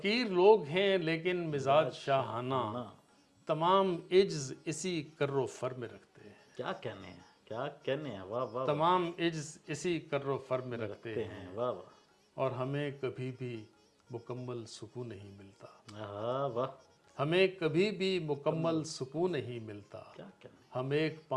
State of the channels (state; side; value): identical; both; correlation 1.00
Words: لوگ ہیں لیکن مزاج شاہانہ، تمام عجز اسی کر و فر میں رکھتے ہیں، کیا کہنے ہیں، واہ واہ، تمام عجز اسی کر و فر میں رکھتے ہیں، واہ واہ، اور ہمیں کبھی بھی مکمل سکون نہیں ملتا، آہا، واہ، ہمیں کبھی بھی مکمل سکون نہیں ملتا، کیا کہنے، ہم ایک